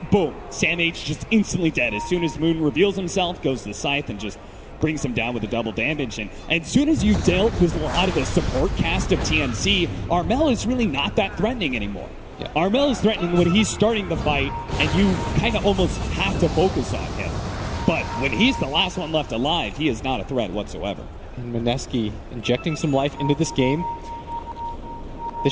boom, Sam H just instantly dead. As soon as Moon reveals himself, goes to the Scythe and just brings him down with the double damage. And as soon as you dealt with a lot of the support cast of TNC, Armel is really not that threatening anymore. Yeah. Armel is threatening when he's starting the fight, and you kind of almost have to focus on him. But when he's the last one left alive, he is not a threat whatsoever. And Mineski injecting some life into this game. This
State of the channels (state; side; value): identical; both; correlation 1.00